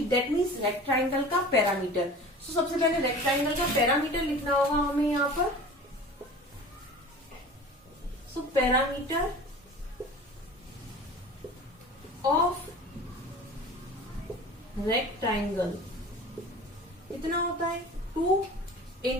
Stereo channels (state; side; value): normal; both; correlation 0.39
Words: that means rectangle का पैरामीटर। तो सबसे पहले रेक्टेंगल का पैरामीटर लिखना होगा हमें यहाँ पर। सो पैरामीटर ऑफ रेक्टेंगल कितना होता है 2